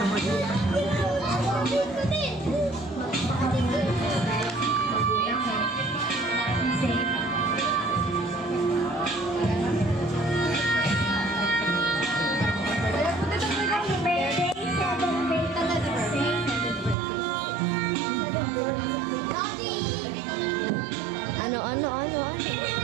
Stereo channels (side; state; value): left; drops out; at 16.9 s